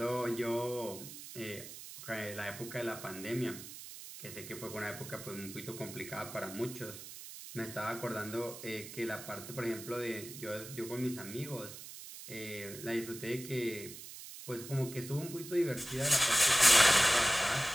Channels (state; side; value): noise; right; hiss, 12 dB below the sound